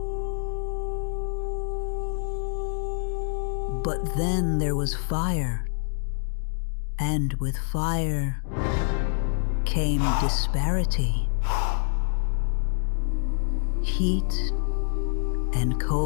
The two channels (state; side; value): silent; right; digital silence